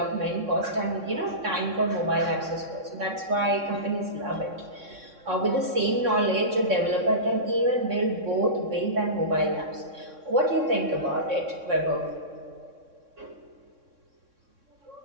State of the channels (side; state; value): left; late; 3.6 ms